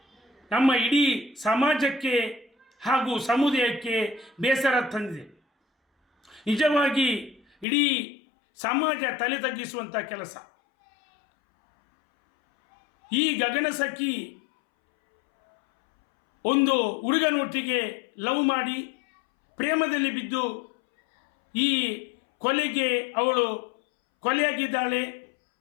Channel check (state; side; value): drops out; right; at 7.7 s